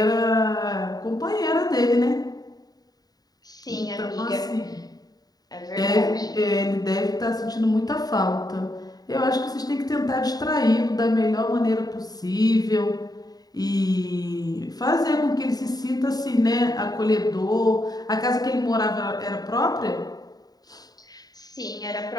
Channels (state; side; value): late; right; 0.18 ms